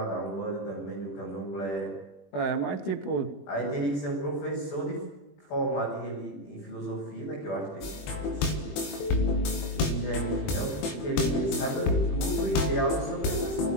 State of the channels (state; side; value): late; right; 21 ms